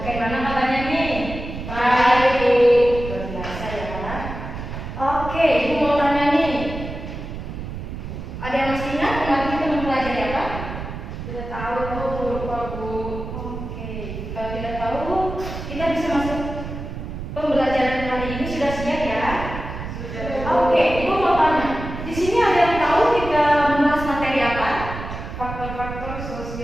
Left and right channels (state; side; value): noise; right; rumble, 8 dB below the sound